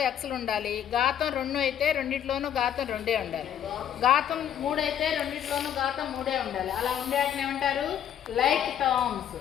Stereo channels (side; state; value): right; quieter; 9.8 dB